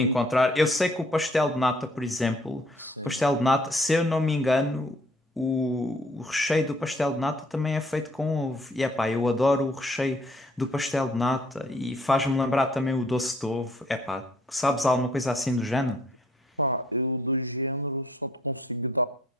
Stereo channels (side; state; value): both; normal; correlation 0.63